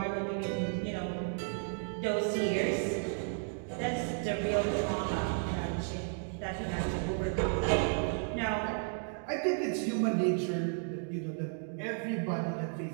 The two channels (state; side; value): silent; left; 55 dB below the other